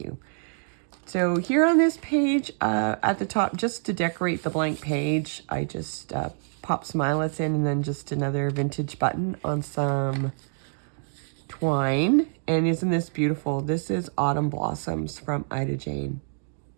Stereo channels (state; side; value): silent; left; 61 dB below the other